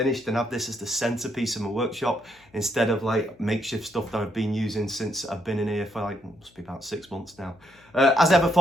and have this as the centerpiece of my workshop instead of like makeshift stuff that I've been using since I've been in here for like, must be about 6 months now. As ever,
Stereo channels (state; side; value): noise; left; hum, 30 dB below the sound